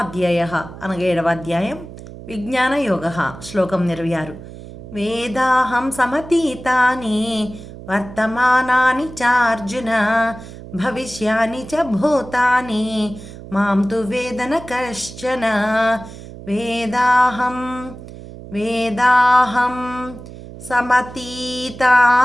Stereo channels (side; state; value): right; noise; hum, 15 dB below the sound